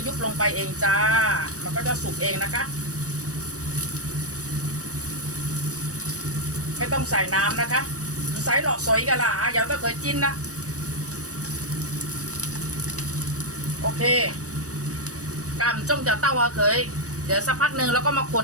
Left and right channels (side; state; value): left; late; 0.66 ms